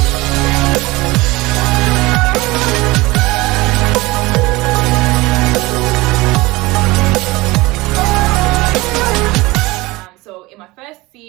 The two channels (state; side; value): quieter; left; 21.5 dB